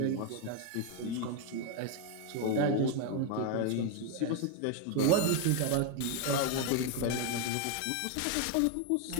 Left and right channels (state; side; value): different; both; correlation 0.01